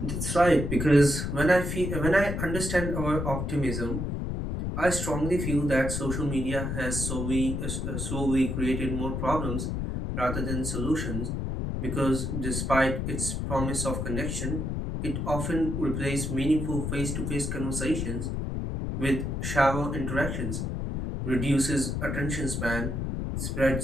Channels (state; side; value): noise; left; rumble, 2 dB below the sound